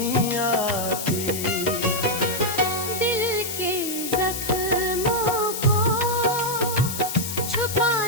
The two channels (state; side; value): noise; left; hiss, 5 dB below the sound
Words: आती। दिल के जख्मों को